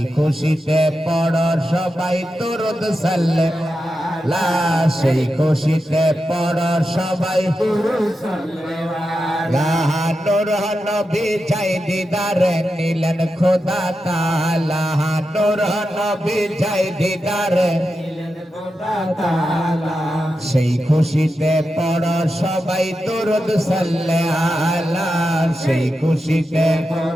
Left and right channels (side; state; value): both; normal; correlation 0.89